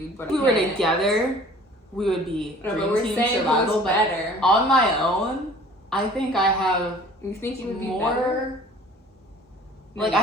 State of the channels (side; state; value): both; normal; correlation 0.49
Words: But if we were together, we would be dream team survival. Better on my own. I think I have. You think you would be more better? Like,